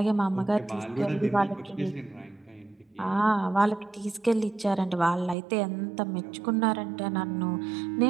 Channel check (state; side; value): drops out; left; at 5.4 s